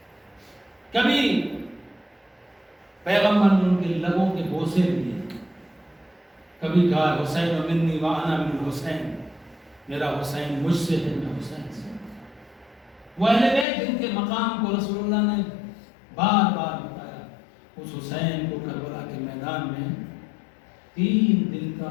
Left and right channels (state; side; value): drops out; right; at 13.7 s